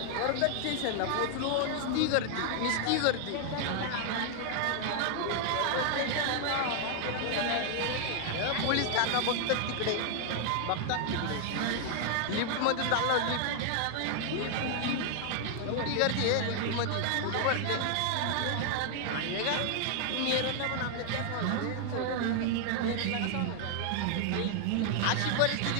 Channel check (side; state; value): both; different; correlation 0.00